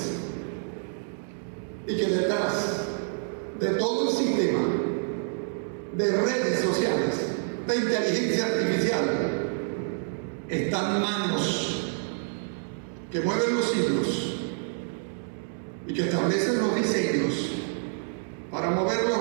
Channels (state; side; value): silent; left; 60 dB below the other